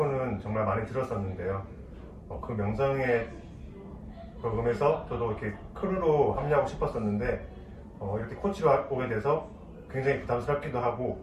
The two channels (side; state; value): both; identical; correlation 1.00